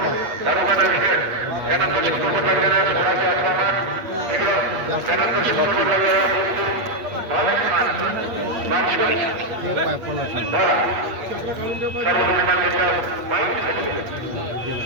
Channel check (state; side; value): late; left; 8.5 ms